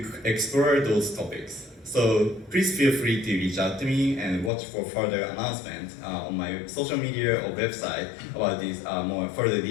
explore those topics. So please feel free to reach out to me and watch for further announcements on my social media or website about these more further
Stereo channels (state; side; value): drops out; right; at 4.5 s